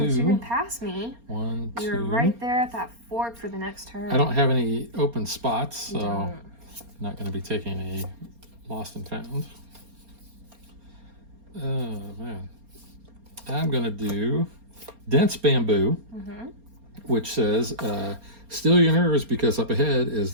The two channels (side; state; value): left; late; 4.3 ms